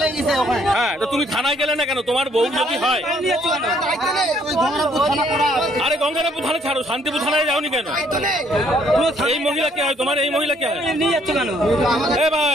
হ্যাঁ, তো তুমি থানায় গেলে না কেন? তোমার বউ যদি হয়। আরে গঙ্গারামপুর থানা ছাড়ো, শান্তিপুর থানায় যাওনি কেন? এই মহিলা কে হয় তোমার? এই মহিলা কে হয়? এ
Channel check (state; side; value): normal; both; correlation 0.65